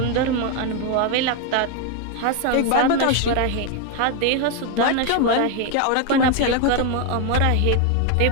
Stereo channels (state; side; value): different; both; correlation 0.01